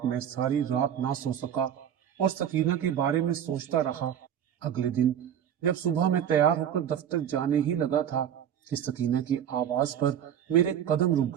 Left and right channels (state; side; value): quieter; left; 9.4 dB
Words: मैं सारी रात ना सो सका और सकीना के बारे में सोचता रहा। अगले दिन जब सुबह मैं तैयार होकर दफ्तर जाने ही लगा था कि सकीना की आवाज पर मेरे कदम